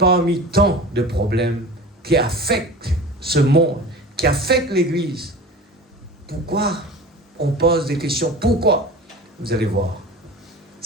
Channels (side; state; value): both; normal; correlation 0.36